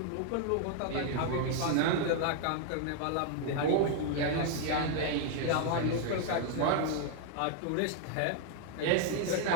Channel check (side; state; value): both; different; correlation 0.00